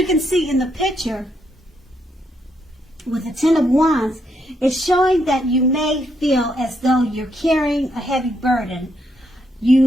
can see in the picture, with the 10 of Wands, it's showing that you may feel as though you're carrying a heavy burden.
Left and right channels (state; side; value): normal; both; correlation 0.77